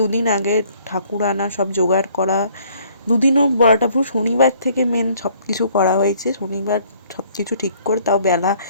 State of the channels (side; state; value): both; inverted; correlation -0.60